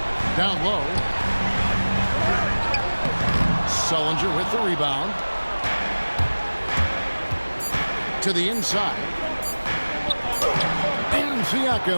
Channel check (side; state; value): both; inverted; correlation -1.00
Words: Down low. Sullinger with the rebound. To the inside. And